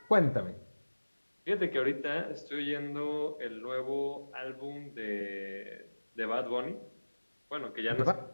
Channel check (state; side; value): inverted; both; correlation -1.00